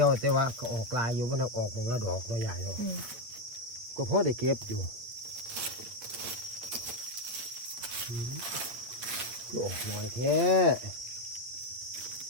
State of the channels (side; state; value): left; late; 8.5 ms